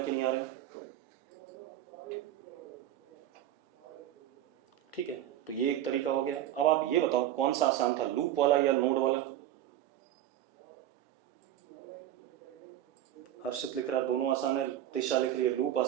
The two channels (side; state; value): left; quieter; 12.2 dB